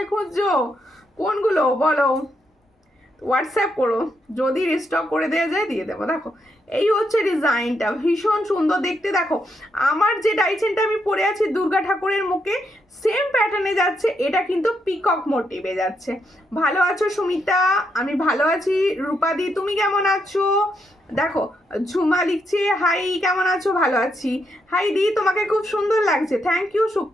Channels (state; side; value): normal; both; correlation 0.79